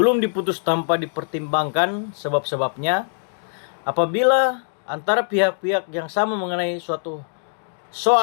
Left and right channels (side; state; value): right; silent; digital silence